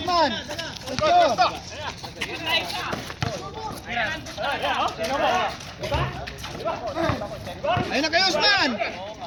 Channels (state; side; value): identical; both; correlation 1.00